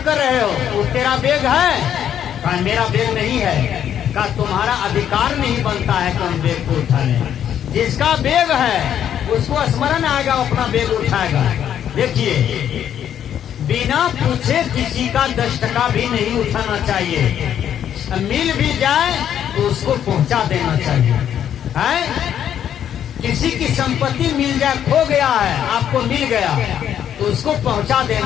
कर रहे हो, वो तेरा बैग है? कहा मेरा बैग नहीं है। कहा तुम्हारा अधिकार नहीं बनता है कि हम बैग को उठा लें। जिसका बैग है उसको स्मरण आएगा, अपना बैग उठाएगा। देखिए, बिना पूछे किसी का 10 टका भी नहीं उठाना चाहिए। मिल भी जाए तो उसको पहुंचा देना चाहिए। है किसी की संपत्ति मिल जाए, खो गया है, आपको मिल गया तो उसको पहुंचा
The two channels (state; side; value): quieter; right; 9.7 dB